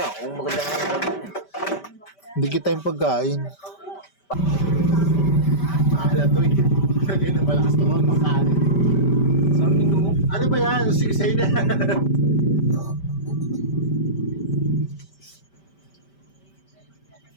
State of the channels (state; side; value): late; right; 5.1 ms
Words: Kung maganda nga Hindi kita yung pagkain. Mahala to eh. Kaya na malakas to ang makalit. Ano ba yan? Sigsay na.